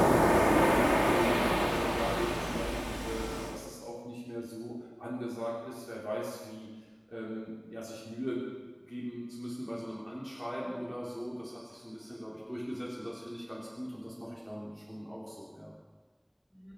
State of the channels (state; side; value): identical; both; correlation 1.00